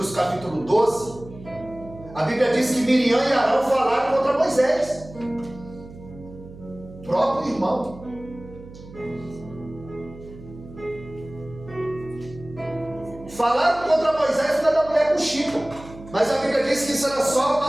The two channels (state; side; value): noise; right; hum, 17 dB below the sound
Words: capítulo 12, a Bíblia diz que Miriam e Arão falaram contra Moisés, próprio irmão. Falaram contra Moisés por causa da mulher com Chico, mas a Bíblia diz que isso era só